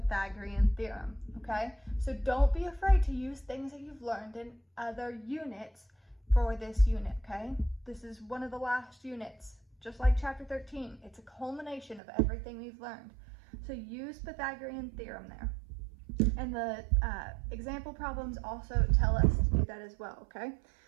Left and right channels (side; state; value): left; drops out; at 12.0 s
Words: theorem, okay? So don't be afraid to use things that you've learned in other units for this unit, okay? This is one of the last units, just like chapter 13. It's a culmination of everything we've learned. So use Pythagorean theorem there. And the example problems also tell us to do that as well, okay?